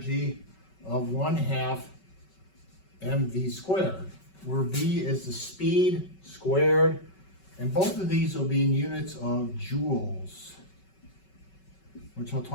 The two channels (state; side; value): late; right; 5.3 ms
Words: of 1/2 mv squared, where v is the speed squared, and both of these will be in units of joules, which I'll